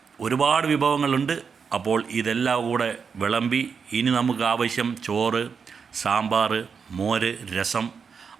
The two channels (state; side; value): quieter; left; 6.0 dB